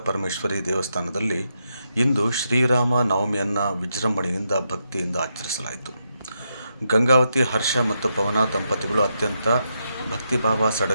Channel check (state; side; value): inverted; both; correlation -0.83